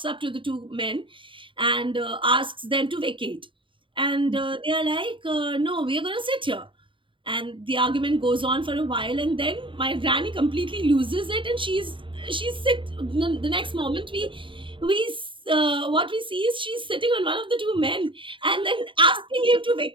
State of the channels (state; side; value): late; left; 0.25 ms